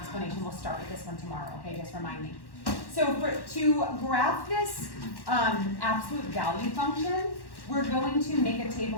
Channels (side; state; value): right; late; 1.1 ms